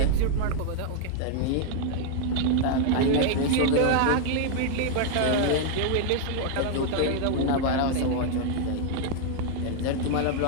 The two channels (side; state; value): both; different; correlation 0.00